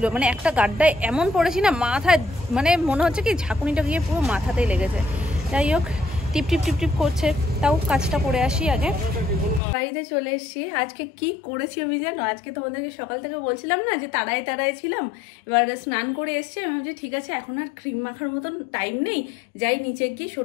মানে একটা গাড্ডায় এমন পড়েছি না মাথায়, মানে মনে হচ্ছে কি ঝাঁকুনিটা গিয়ে পুরো মাথাতেই লেগেছে। যাই হোক টিপ টিপ টিপ টিপ করছে, তাও কাজটা করে আসি আগে। বাড়িতে চলে এসেছি। আজকে কি করেছি আমি জানো? আজকে তোমাদেরকে সকাল থেকে বলছিলাম না যে তাড়ায় তাড়ায় ছিলাম, এবার স্নান করে এসছি। আমি ভাবছি ঠিক আছে এখন আর ক্রিম মাখার মতন টাইম নেই, যাই নিচে গিয়ে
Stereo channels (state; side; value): drops out; right; at 9.6 s